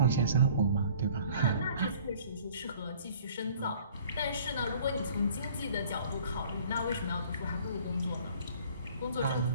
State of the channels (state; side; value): inverted; both; correlation -0.52